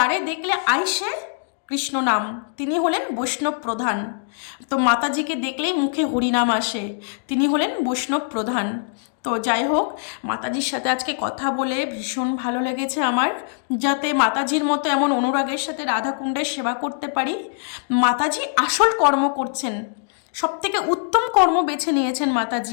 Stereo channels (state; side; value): silent; right; digital silence